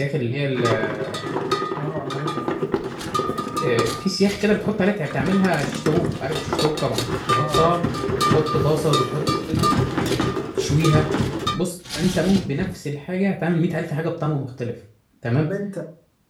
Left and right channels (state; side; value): identical; both; correlation 1.00